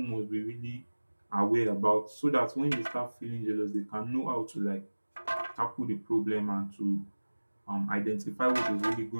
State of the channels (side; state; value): both; inverted; correlation -1.00